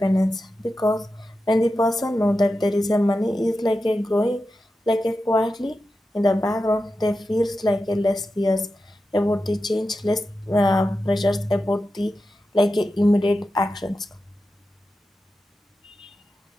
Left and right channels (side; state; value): both; normal; correlation 0.91